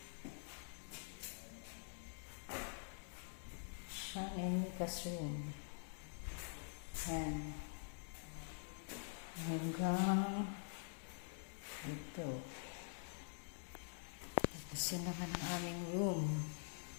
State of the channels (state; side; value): silent; right; digital silence